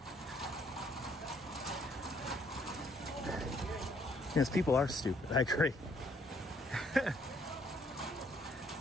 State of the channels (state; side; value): normal; both; correlation 0.67